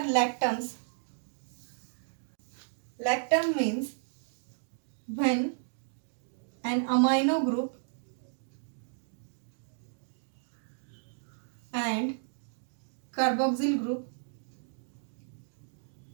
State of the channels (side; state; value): left; silent; digital silence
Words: Lactam means when an amino group and carboxyl group